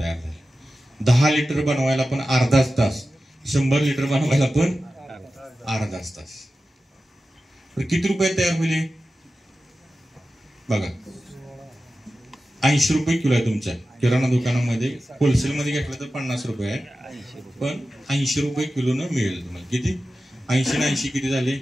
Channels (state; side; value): normal; both; correlation 0.93